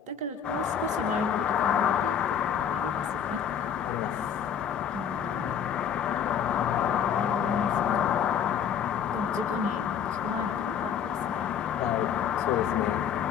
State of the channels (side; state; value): right; quieter; 8.2 dB